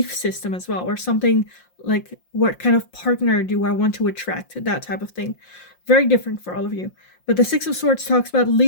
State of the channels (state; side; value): late; right; 5.7 ms